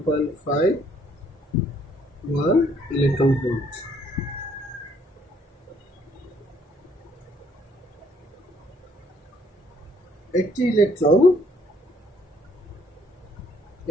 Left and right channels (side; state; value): both; normal; correlation 0.65